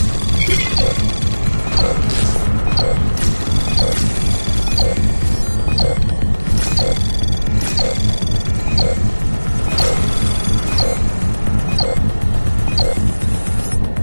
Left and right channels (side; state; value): both; inverted; correlation -1.00